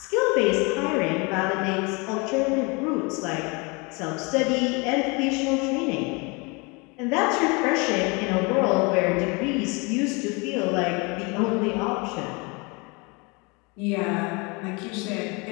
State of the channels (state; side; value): quieter; right; 28.9 dB